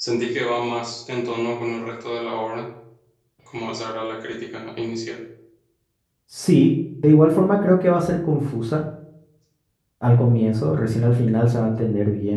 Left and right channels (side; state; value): both; identical; correlation 1.00